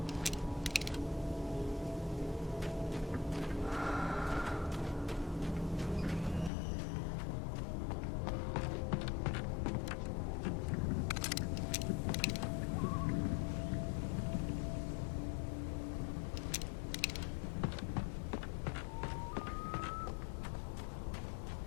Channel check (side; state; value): right; drops out; at 6.5 s